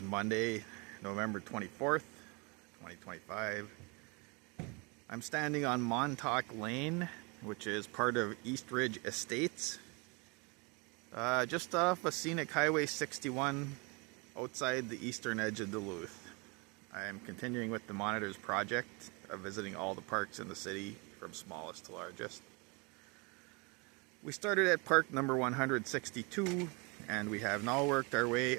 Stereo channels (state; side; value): quieter; left; 30.1 dB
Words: Monday, November 24th, 2025. I'm standing on Montauk Lane, which is part of East Ridge Estates, just off of Scenic Highway 61 outside the eastern edge of Duluth. I am continuing with the Monitors project of visiting all the parks in the city from smallest to largest. We started at park number 162 and we have now worked our